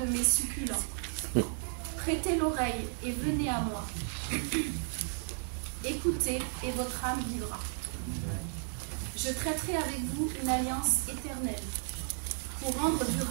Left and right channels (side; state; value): left; silent; 55 dB below the other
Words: mes succulents. Prêtez l'oreille et venez à moi. Écoutez et votre âme vivra. Je traiterai avec vous une alliance éternelle pour rendre